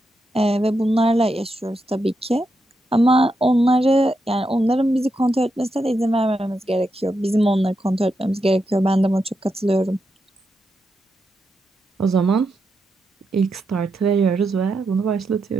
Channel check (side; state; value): both; normal; correlation 0.85